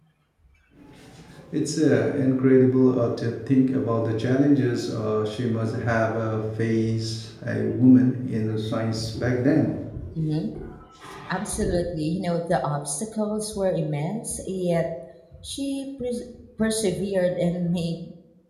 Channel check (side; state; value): both; identical; correlation 1.00